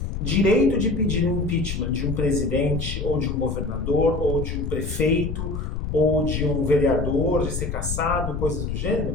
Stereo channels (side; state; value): left; noise; rumble, 4 dB below the sound